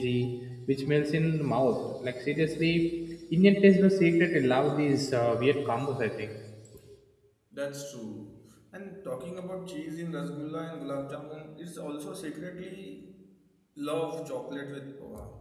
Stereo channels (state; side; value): identical; both; correlation 1.00